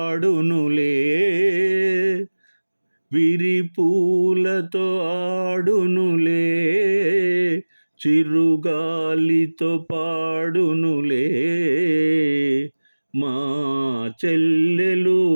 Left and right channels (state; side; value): inverted; both; correlation -1.00